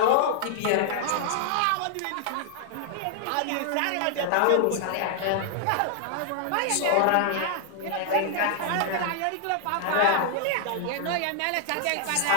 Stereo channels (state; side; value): different; both; correlation -0.01